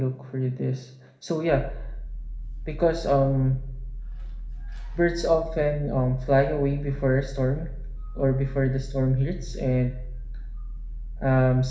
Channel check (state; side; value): identical; both; correlation 1.00